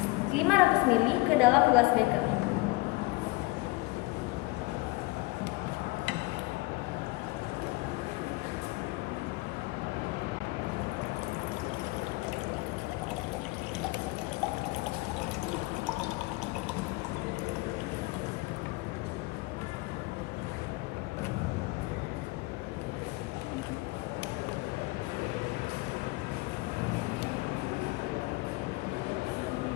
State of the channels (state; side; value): quieter; right; 23.0 dB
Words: 500 ml ke dalam gelas beker.